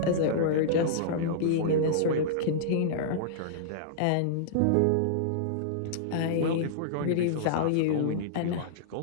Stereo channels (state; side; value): different; both; correlation -0.03